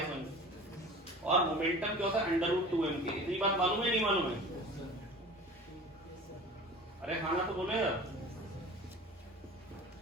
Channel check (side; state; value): both; normal; correlation 0.39